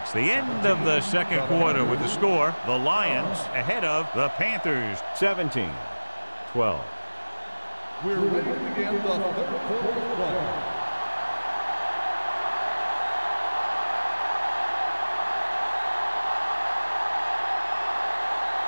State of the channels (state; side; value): inverted; both; correlation -1.00